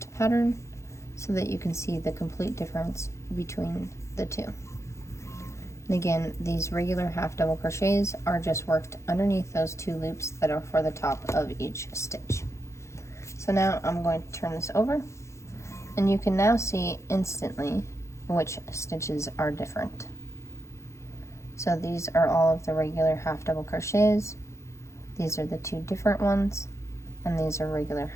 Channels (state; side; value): late; right; 0.14 ms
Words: pattern so that you can see the complete difference between the two. And again, these regular half double crochets are just worked underneath those 2 loops that are for the top of each stitch. So now I'm going to turn this over, and you can now see instantly which stitches are different. So these are all of the regular half double crochets, these are the 2 different ones, and these are regular